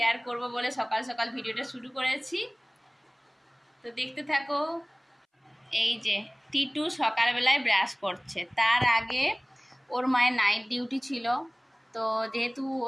করব বলে সকাল সকাল ভিডিওটা শুরু করেছি। তো দেখতে থাকো। এই যে টিটু সকালবেলায় ব্রাশ করছে, তার আগে ওর মায়ের নাইট ডিউটি ছিল। তো যেহেতু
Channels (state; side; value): identical; both; correlation 1.00